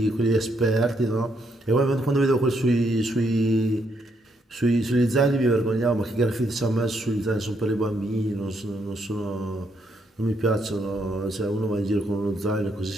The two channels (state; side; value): normal; both; correlation 0.75